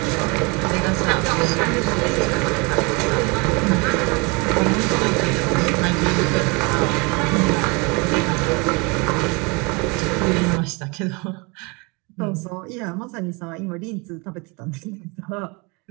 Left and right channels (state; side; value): quieter; left; 28.8 dB